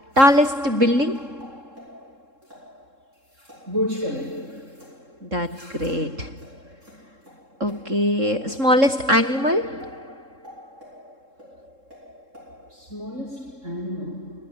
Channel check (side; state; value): left; late; 3.7 ms